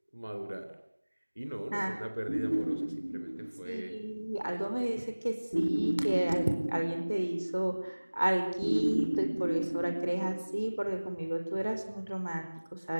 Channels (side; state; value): both; inverted; correlation -1.00